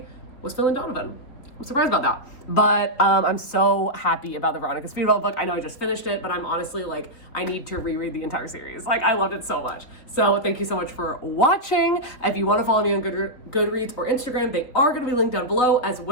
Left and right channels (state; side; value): late; right; 3.7 ms